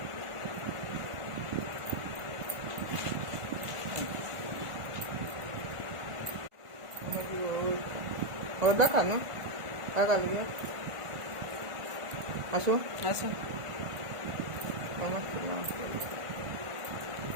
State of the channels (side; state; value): left; late; 1.5 ms